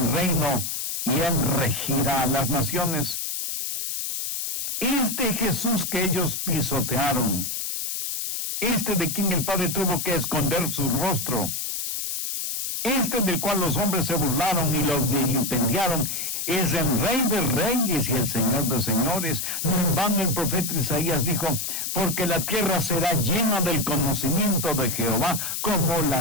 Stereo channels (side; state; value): left; noise; hiss, 3 dB below the sound